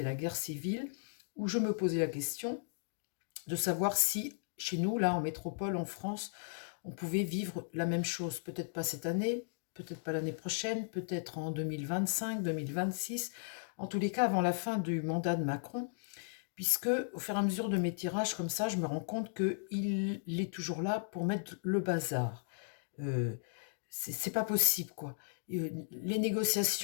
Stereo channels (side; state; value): right; silent; digital silence